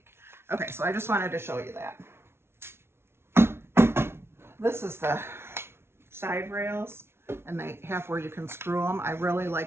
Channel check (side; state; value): left; late; 0.12 ms